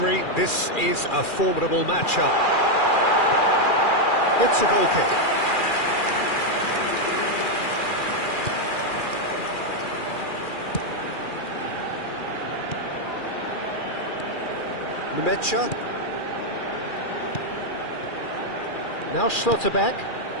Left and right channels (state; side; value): late; right; 2.4 ms